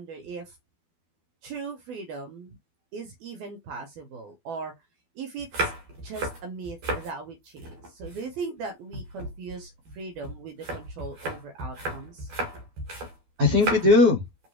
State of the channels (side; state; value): left; late; 12 ms